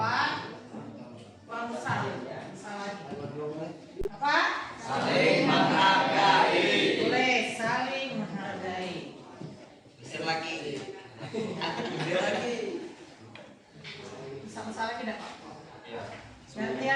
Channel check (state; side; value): identical; both; correlation 1.00